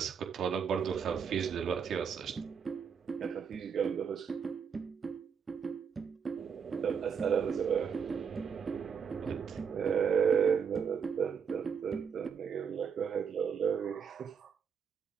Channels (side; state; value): left; quieter; 6.8 dB